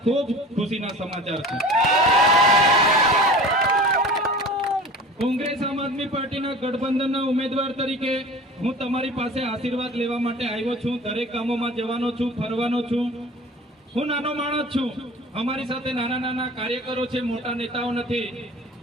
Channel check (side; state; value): both; normal; correlation 0.39